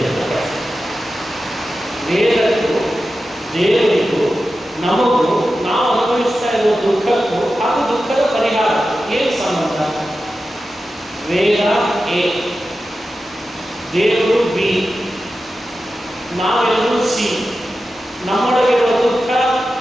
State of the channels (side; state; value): both; normal; correlation 0.92